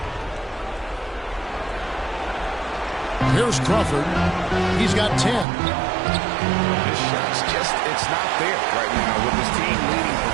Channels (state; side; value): drops out; left; at 5.5 s